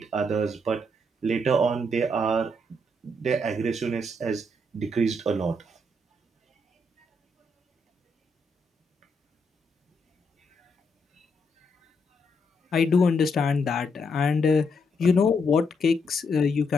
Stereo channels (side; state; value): both; normal; correlation 0.77